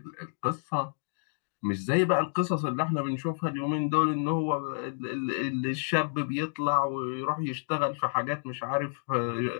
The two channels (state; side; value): silent; right; digital silence